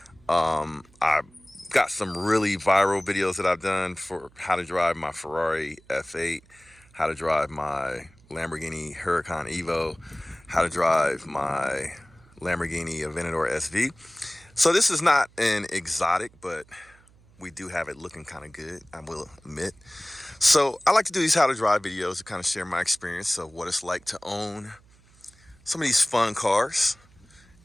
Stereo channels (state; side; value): noise; right; hum, 28 dB below the sound